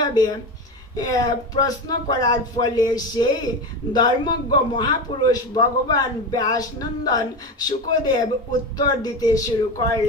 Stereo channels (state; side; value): normal; both; correlation 0.21